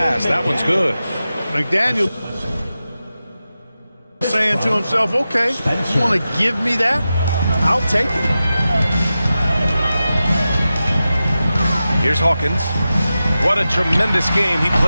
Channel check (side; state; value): both; inverted; correlation -0.93